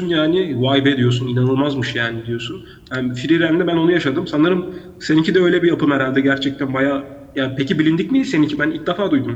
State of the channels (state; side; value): identical; both; correlation 1.00